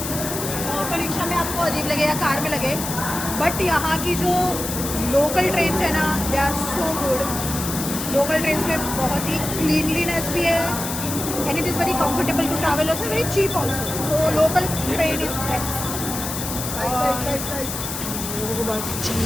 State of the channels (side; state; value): left; noise; hiss, 5 dB below the sound